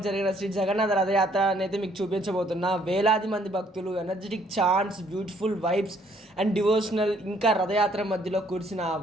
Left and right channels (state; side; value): normal; both; correlation 0.65